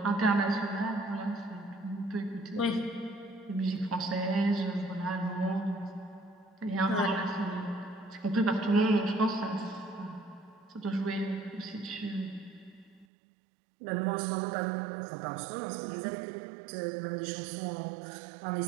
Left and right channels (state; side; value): drops out; left; at 13.1 s